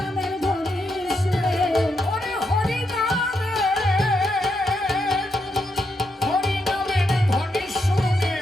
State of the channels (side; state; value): both; normal; correlation 0.81